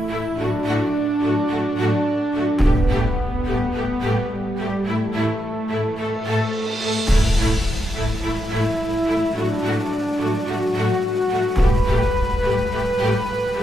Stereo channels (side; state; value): both; normal; correlation 0.83